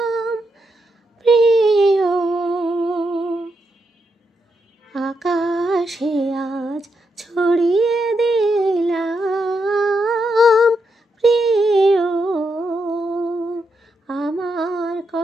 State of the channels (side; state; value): both; normal; correlation 0.82